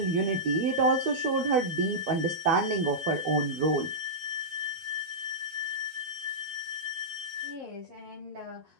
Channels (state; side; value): late; left; 12 ms